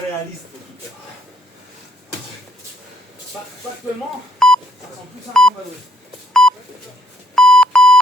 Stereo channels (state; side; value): normal; both; correlation 0.66